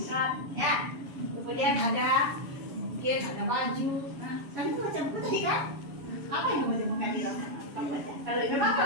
ya. Kemudian mungkin ada baju. Nah, kami itu baca buku tadi kan? Apa yang kamu temukan di sana? Kamu baca. Kalau memang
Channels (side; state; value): left; late; 7.1 ms